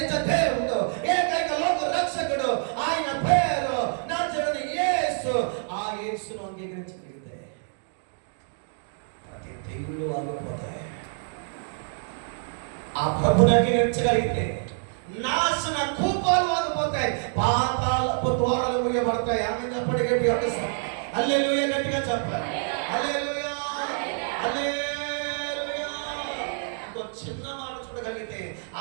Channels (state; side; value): silent; left; 60 dB below the other